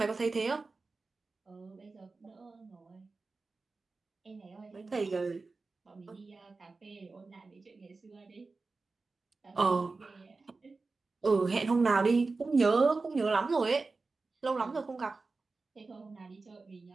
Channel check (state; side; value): quieter; left; 3.9 dB